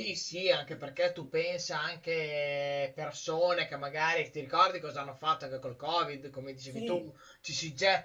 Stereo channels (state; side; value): identical; both; correlation 1.00